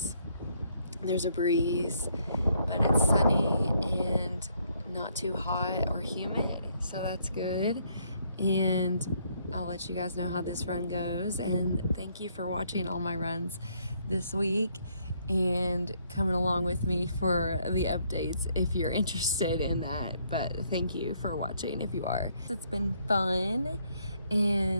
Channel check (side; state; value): both; inverted; correlation -0.69